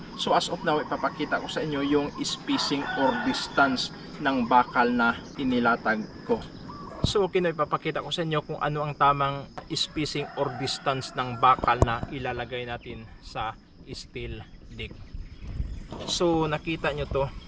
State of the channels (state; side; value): identical; both; correlation 1.00